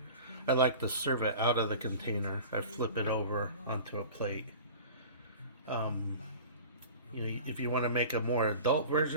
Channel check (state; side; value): inverted; both; correlation -0.39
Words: I like to serve it out of the container. I flip it over onto a plate. If you want to make a more adult